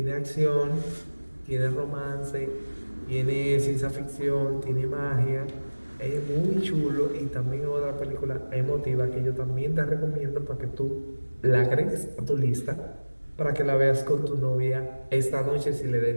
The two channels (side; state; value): both; inverted; correlation -1.00